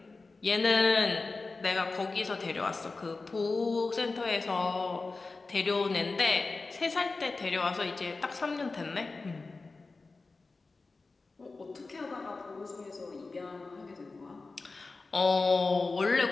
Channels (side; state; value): right; quieter; 3.8 dB